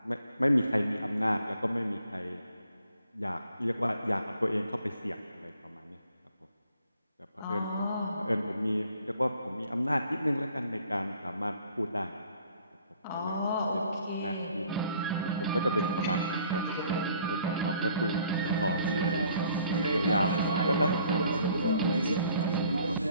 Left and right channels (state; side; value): inverted; both; correlation -0.60